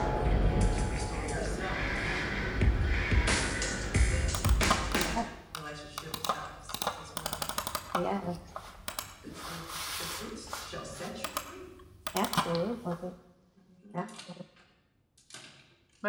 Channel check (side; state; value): both; identical; correlation 1.00